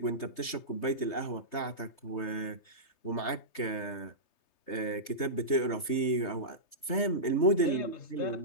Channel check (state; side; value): late; right; 3.3 ms